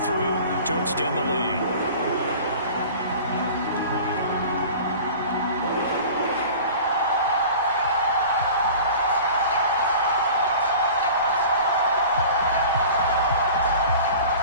to extend the lead.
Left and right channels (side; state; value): both; inverted; correlation -0.41